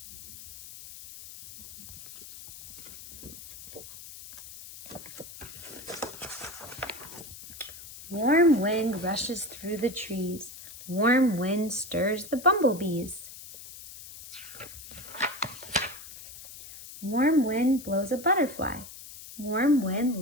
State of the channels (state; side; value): noise; left; hiss, 15 dB below the sound